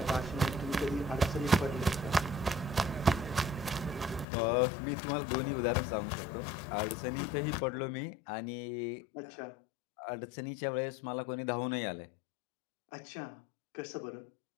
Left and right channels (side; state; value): right; drops out; at 4.2 s